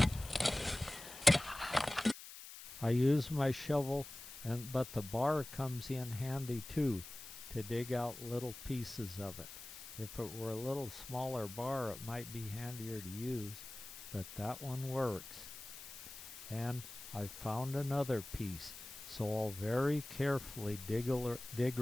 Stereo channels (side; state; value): left; noise; hiss, 13 dB below the sound